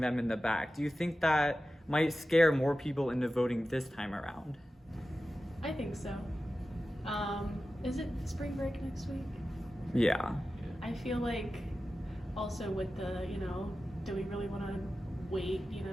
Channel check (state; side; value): normal; both; correlation 0.94